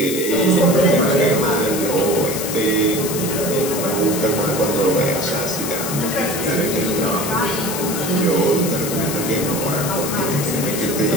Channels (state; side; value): noise; left; hiss, 5 dB below the sound